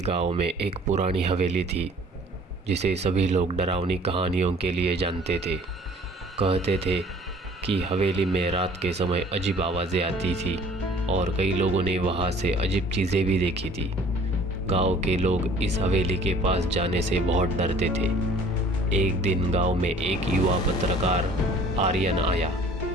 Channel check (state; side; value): normal; both; correlation 0.52